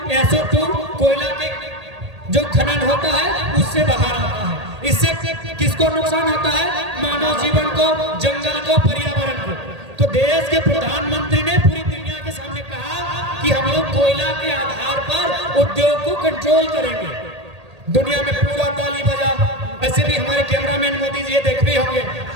SO2 कोयला के जो खनन होता है उससे बाहर आता है, इससे किसको नुकसान होता है, मानव जीवन को, जंगल को, पर्यावरण को। तो देश के प्रधानमंत्री ने पूरी दुनिया के कि हम लोग कोयला के आधार पर उद्योग को कंट्रोल करेंगे। दुनिया में पूरा ताली बजा। ऐसे भी हमारे कैमरामैन मोदी जी देख भी होंगे,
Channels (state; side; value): late; left; 1.8 ms